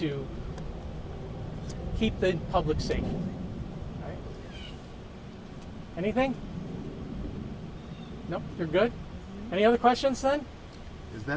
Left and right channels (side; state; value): both; identical; correlation 1.00